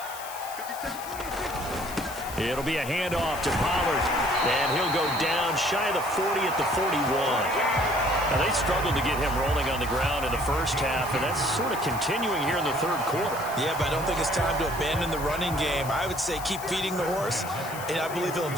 It'll be a handoff to Pollard. And he'll go down shy of the 40 at the 41. Now, they struggled to get him rolling on the ground in the first half, and that's sort of continuing here in the 3rd quarter. Yeah, but I don't think it's time to abandon the running game. I would say keep feeding the horse, and I believe he'll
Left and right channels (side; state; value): left; noise; hiss, 13 dB below the sound